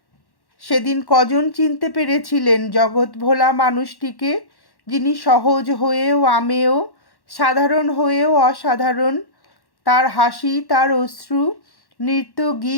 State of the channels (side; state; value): right; late; 1.1 ms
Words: সেদিন কজন চিনতে পেরেছিলেন জগৎ ভোলা মানুষটিকে, যিনি সহজ হয়েও আমেয়, সাধারণ হয়েও অসাধারণ। তার হাসি, তার অশ্রু, নৃত্য,